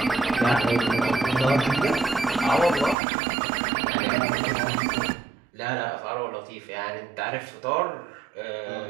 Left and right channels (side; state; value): left; drops out; at 3.0 s